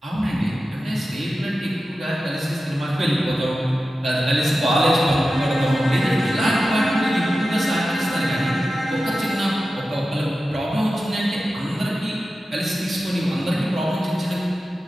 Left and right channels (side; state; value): both; normal; correlation 0.93